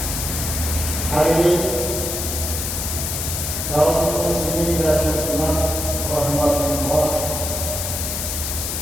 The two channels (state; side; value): noise; left; hiss, 3 dB below the sound